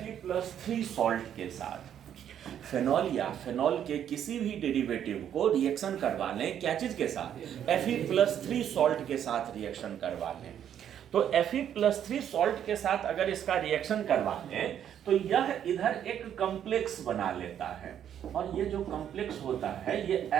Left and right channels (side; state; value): left; quieter; 9.7 dB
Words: सॉल्ट के साथ, फेनॉल या फेनॉल के किसी भी डेरिवेटिव को रिएक्शन करवा लें क्या चीज के साथ? Fe+3 सॉल्ट के साथ रिएक्शन करवा लें, तो Fe+3 सॉल्ट के साथ अगर इसका रिएक्शन करवा लें तो यह इधर एक कॉम्प्लेक्स बना लेता है, और ये जो कॉम्प्लेक्स होता है ये